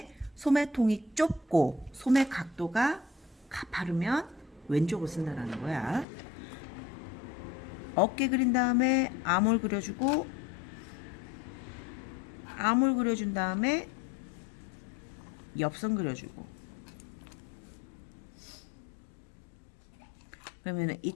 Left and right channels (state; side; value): drops out; right; at 6.1 s